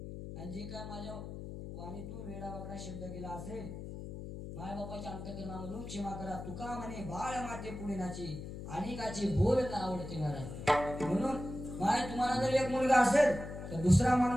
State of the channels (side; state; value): left; noise; hum, 9 dB below the sound